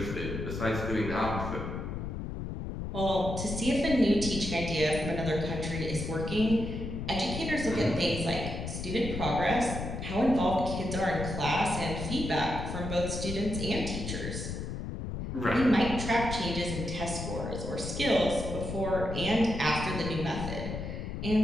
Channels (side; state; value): left; noise; rumble, 5 dB below the sound